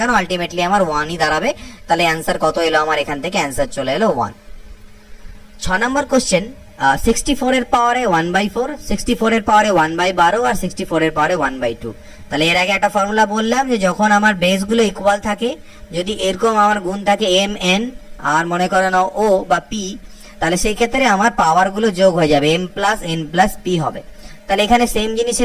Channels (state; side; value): identical; both; correlation 1.00